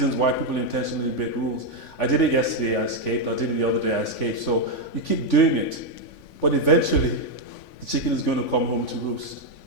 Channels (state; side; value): late; right; 3.5 ms